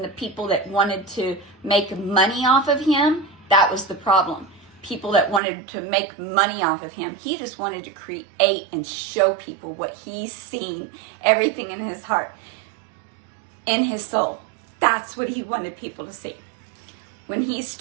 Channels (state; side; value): drops out; left; at 5.4 s